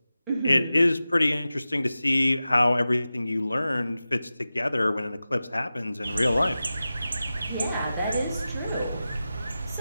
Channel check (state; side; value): inverted; both; correlation -0.94